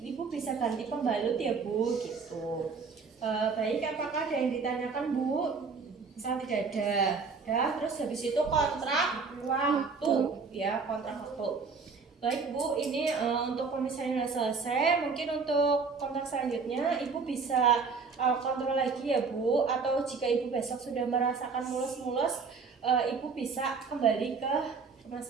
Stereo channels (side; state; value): left; quieter; 4.9 dB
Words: Ibu bisa ganti pembalut ya Bu gitu. Baik, apakah ada yang ditanyakan Bu? Misal tidak ada. Dah, terus habis itu kontrak waktu ya, kontrak waktu. Baik Bu, ini untuk pemisahan sudah selesai. Mungkin untuk kontrak selanjutnya Ibu bisa kontrol lagi ya Bu. Atau jika Ibu besok sudah merasakan mulus-mulus, Ibu bisa kembali ke rumah